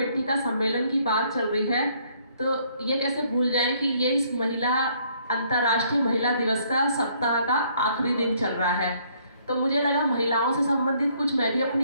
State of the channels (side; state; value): both; inverted; correlation -0.65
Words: का सम्मेलन की बात चल रही है, तो ये कैसे भूल जाएं कि ये इस अंतर्राष्ट्रीय महिला दिवस का सप्ताह का आखिरी दिन चल रहा है। तो मुझे लगा महिलाओं से संबंधित कुछ मैं भी